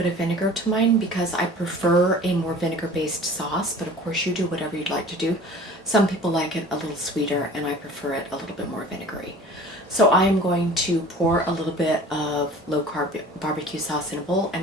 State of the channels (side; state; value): both; normal; correlation 0.44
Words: of vinegar to mine because I prefer a more vinegar-based sauce, but of course you do whatever you'd like to do. Some people like it a little sweeter, and I prefer it a little bit more vinegary. So I'm going to pour a little bit of low-carb barbecue sauce in a bowl and